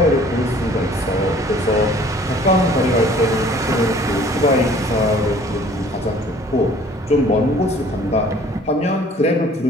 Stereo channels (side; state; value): both; normal; correlation 0.53